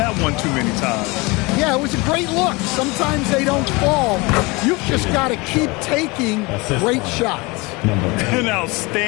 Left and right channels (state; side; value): quieter; right; 25.2 dB